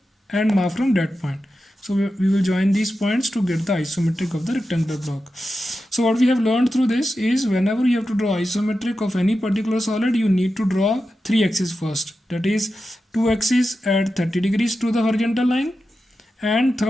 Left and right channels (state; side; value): normal; both; correlation 0.91